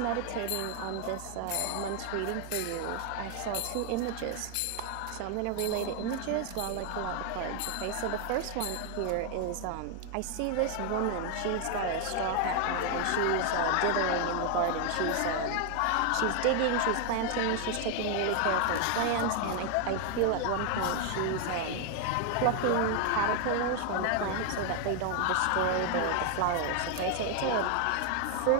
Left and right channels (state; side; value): different; both; correlation 0.00